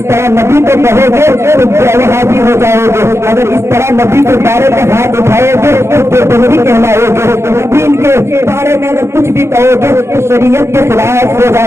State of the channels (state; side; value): late; left; 0.13 ms